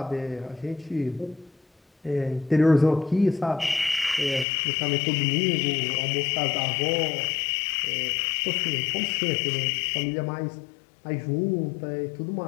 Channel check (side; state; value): right; drops out; at 4.5 s